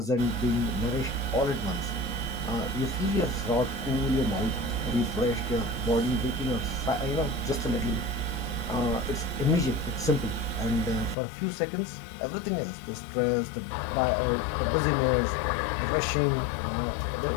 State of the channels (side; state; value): right; drops out; at 11.2 s